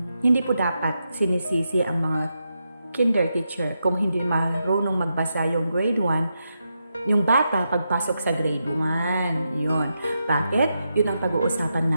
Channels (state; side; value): inverted; both; correlation -0.85